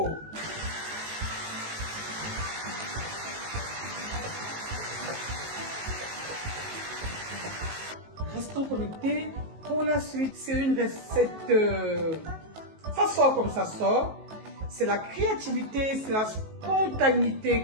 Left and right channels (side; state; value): left; late; 19 ms